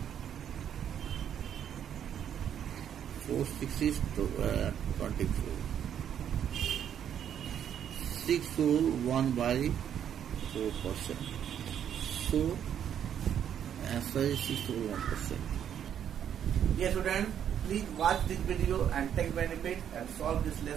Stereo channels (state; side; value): quieter; left; 9.2 dB